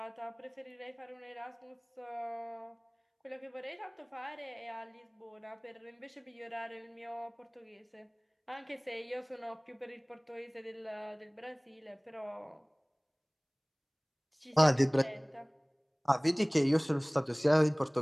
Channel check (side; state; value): both; identical; correlation 1.00